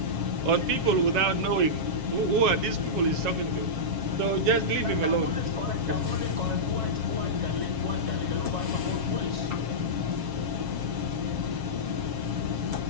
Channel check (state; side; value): late; left; 7.3 ms